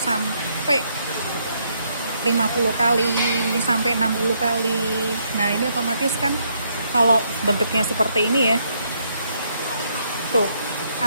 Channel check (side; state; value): both; inverted; correlation -0.73